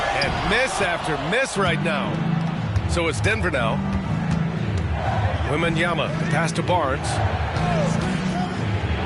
miss after miss right now. So it's Denver now. Wembanyama, pass to Barnes.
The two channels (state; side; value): identical; both; correlation 1.00